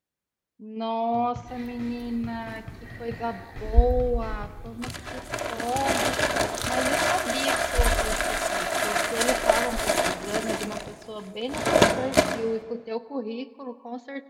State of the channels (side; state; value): both; identical; correlation 1.00